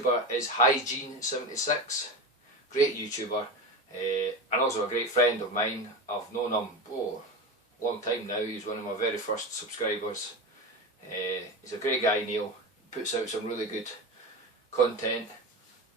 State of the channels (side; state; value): both; normal; correlation 0.23